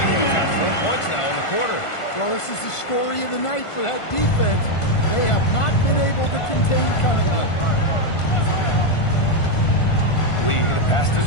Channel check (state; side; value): late; right; 1.5 ms